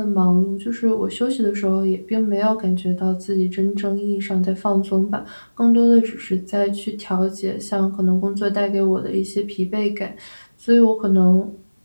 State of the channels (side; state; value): both; inverted; correlation -1.00